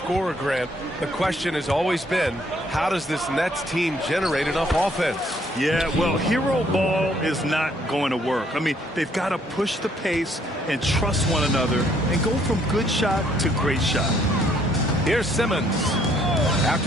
Grant, the question has always been, how does this Nets team generate enough offense? Yeah, well, hero ball is not going to work. I mean, they've got to push the pace and trust one another and go from good shot to great shot. Here's Simmons.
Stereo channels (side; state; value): both; normal; correlation 0.66